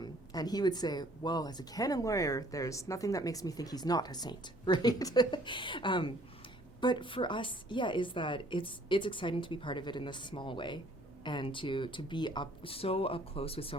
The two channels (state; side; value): normal; both; correlation 0.58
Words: he would say, well, as a canon lawyer, there's nothing that makes me think he's not a saint, right? But for us, is that it's exciting to be part of it in this small way, and to be so up close with so